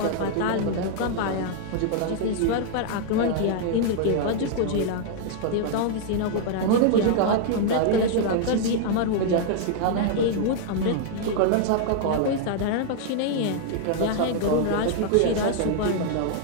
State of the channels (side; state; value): both; different; correlation 0.00